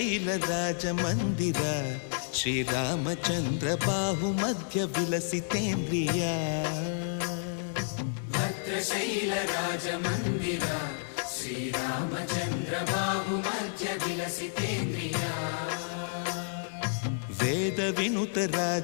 ರಾಜ ಮಂದಿರ ಶ್ರೀರಾಮಚಂದ್ರ ಬಾಹು ಮಧ್ಯ ವಿಲಸಿತೇಂದ್ರಿಯ ಭದ್ರಶೈಲ ರಾಜ ಮಂದಿರ ಶ್ರೀರಾಮಚಂದ್ರ ಬಾಹು ಮಧ್ಯ ವಿಲಸಿತೇಂದ್ರಿಯ ವೇದ ವಿನುತ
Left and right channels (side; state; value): right; silent; digital silence